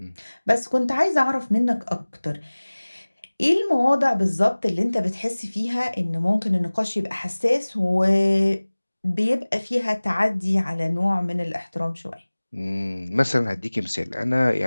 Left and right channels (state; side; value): inverted; both; correlation -1.00